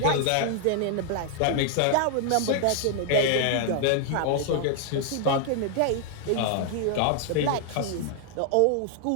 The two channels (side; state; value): both; different; correlation 0.00